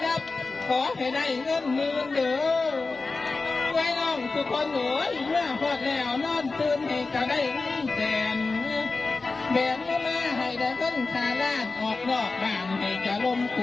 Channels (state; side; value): quieter; right; 3.8 dB